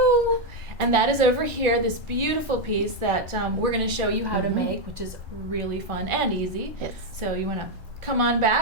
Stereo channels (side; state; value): both; normal; correlation 0.03